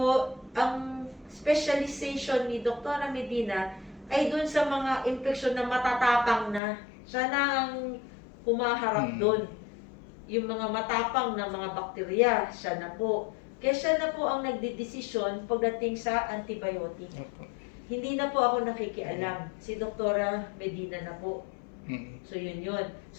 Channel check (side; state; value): right; drops out; at 6.6 s